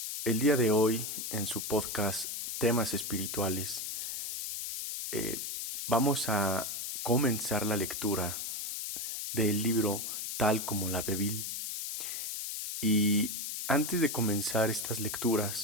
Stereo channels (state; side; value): noise; left; hiss, 4 dB below the sound